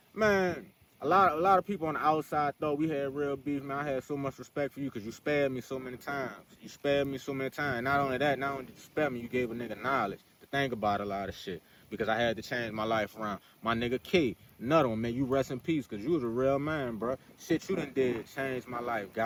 a lot of people on the outside thought we had real beef, man. I had so much respect for you because you spared me so many times. Not only did you spare me, you gave a nigga knowledge to think about a lot of shit. Because I had to change my life around. My nigga K, another one, man, you rest in peace, because you was a real man, bro. Shit you done did changed my life,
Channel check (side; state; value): both; identical; correlation 1.00